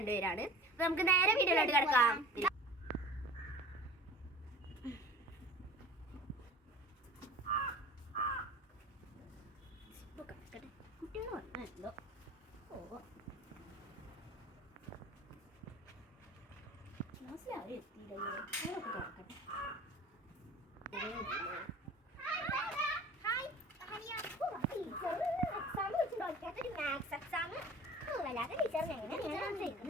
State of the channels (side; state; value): both; normal; correlation 0.41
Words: അപ്പൊ നമുക്ക് നേരെ വീഡിയോയിലോട്ട് കിടക്കാം. കുട്ടികൾ വന്നല്ലോ.